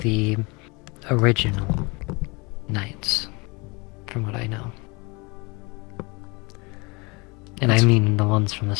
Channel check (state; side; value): quieter; right; 27.6 dB